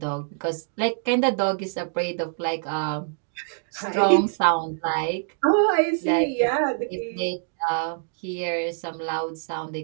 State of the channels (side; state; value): left; silent; 62 dB below the other